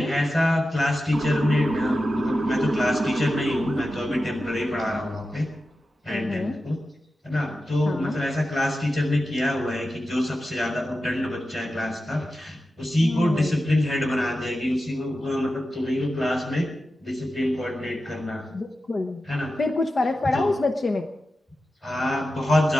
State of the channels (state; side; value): normal; both; correlation 0.92